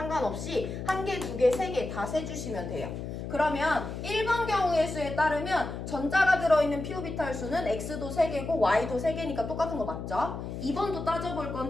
1개, 2개, 3개 다 세주시면 돼요. 그러면 1번 경우의 수에 따르면 전자가 들어있는 p 오비탈 수는 x도 3개고 y도 3개니까 똑같은 거 맞죠? 2번도 따져볼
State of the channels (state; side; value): noise; left; hum, 7 dB below the sound